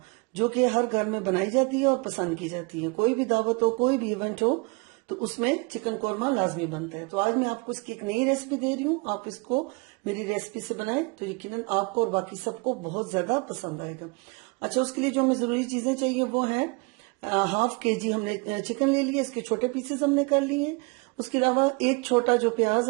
जो कि हर घर में बनाई जाती है और पसंद की जाती है। कोई भी दावत हो, कोई भी इवेंट हो, तो उसमें चिकन कोरमा लाजमी बनता है। तो आज मैं आपको इसकी एक नई रेसिपी दे रही हूँ। आप इसको मेरी रेसिपी से बनाएं तो यकीनन आपको और बाकी सबको बहुत ज्यादा पसंद आएगा। अच्छा, उसके लिए जो हमें जरूरी चीजें चाहिए वो है हाफ केजी हमने चिकन ले लिया, इसके छोटे पीसेस हमने कर लिए। उसके अलावा एक छोटा जो प्याज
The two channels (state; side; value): quieter; left; 28.9 dB